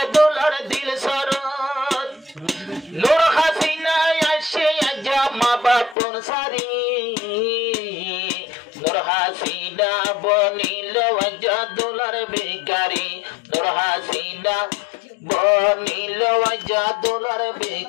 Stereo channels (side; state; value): right; drops out; at 6.0 s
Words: দুলার দিল সরত নূর হাসিনা আসে জামা বাপুর সারি নূর হাসিনা বনিল জাদুলার ভিখারি নূর হাসিনা বনিল জাদুলার